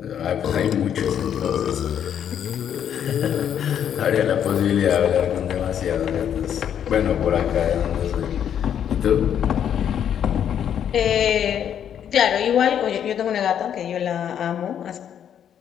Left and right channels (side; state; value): right; quieter; 9.2 dB